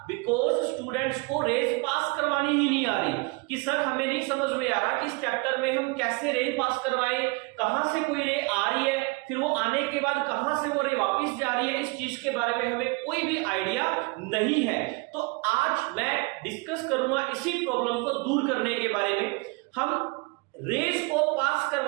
बिकॉज स्टूडेंट्स को रेज पास करवानी ही नहीं आ रही कि सर हमें नहीं समझ में आ रहा कि इस चैप्टर में हम कैसे रे पास करवाएं, कहां से कोई रे आ रही है, फिर वो आने के बाद कहां से वो रे वापस जा रही है, इस चीज के बारे में हमें कोई भी आइडिया नहीं है। तो आज मैं डिस्कस करूंगा इसी प्रॉब्लम को दूर करने के बारे में। हम रेज को पास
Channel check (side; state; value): left; quieter; 28.3 dB